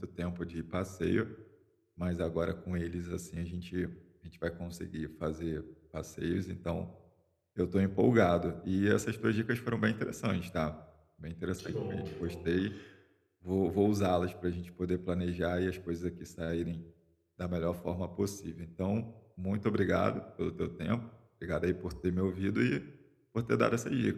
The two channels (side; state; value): both; identical; correlation 1.00